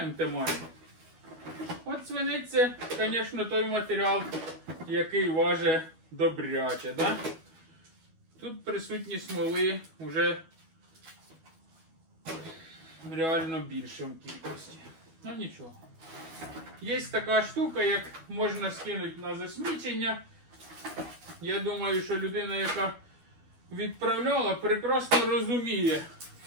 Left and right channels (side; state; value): left; late; 12 ms